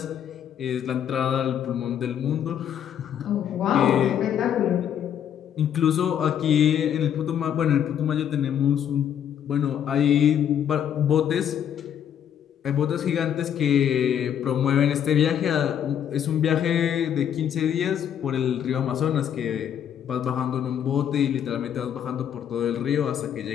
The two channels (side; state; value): right; quieter; 9.3 dB